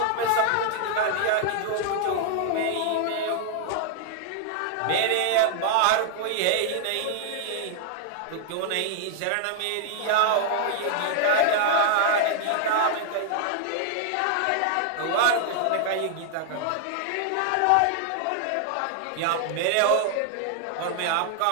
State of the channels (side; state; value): both; different; correlation 0.00